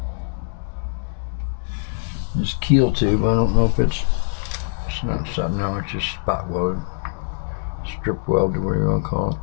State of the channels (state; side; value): silent; right; digital silence